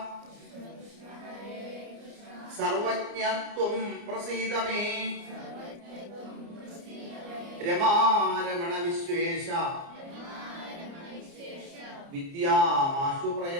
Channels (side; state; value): left; late; 29 ms